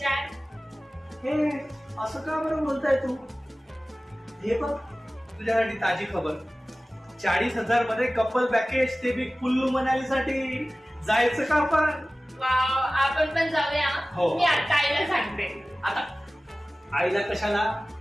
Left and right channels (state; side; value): normal; both; correlation 0.97